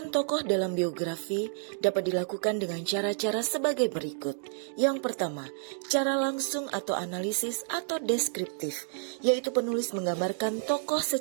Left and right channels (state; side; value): silent; left; digital silence